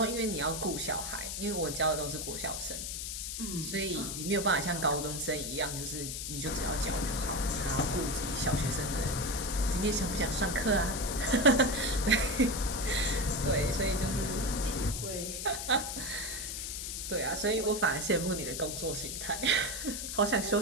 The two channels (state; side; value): noise; left; hiss, 5 dB below the sound